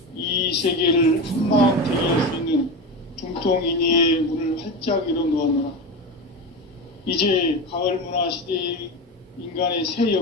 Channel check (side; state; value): both; normal; correlation 0.21